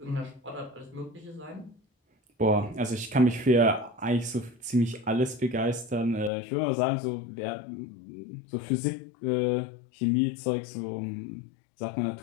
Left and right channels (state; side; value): drops out; right; at 6.3 s